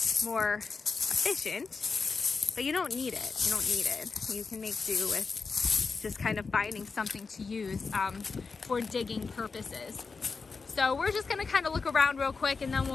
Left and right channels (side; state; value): right; quieter; 4.6 dB